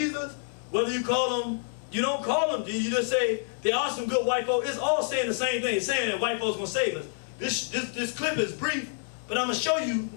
whether you call him, you don't call them, you just say there are some good white folks. It's all saying the same thing. It's saying that white folks gonna save us. This clip is brief, but I'm gonna show you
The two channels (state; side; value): silent; right; digital silence